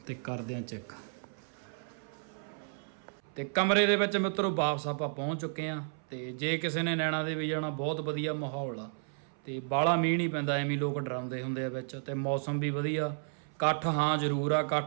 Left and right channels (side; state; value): left; silent; 56 dB below the other